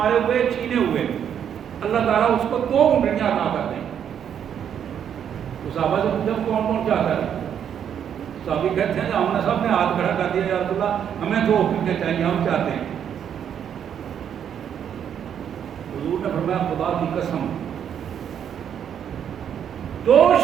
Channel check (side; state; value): left; quieter; 8.8 dB